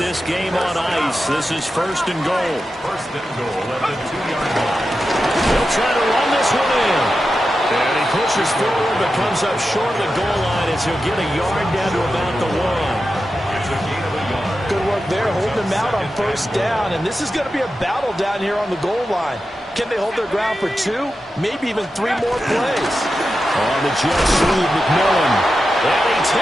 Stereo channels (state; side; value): normal; both; correlation 0.91